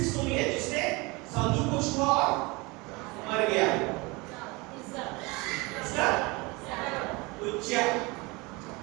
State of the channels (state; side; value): quieter; left; 25.6 dB